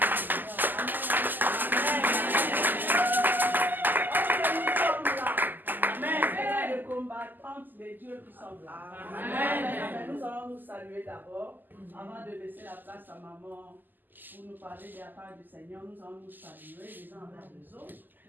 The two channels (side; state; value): left; late; 0.088 ms